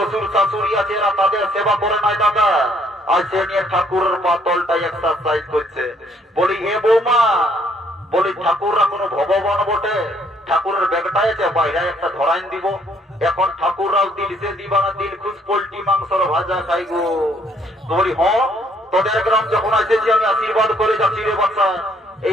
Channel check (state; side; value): normal; both; correlation 0.66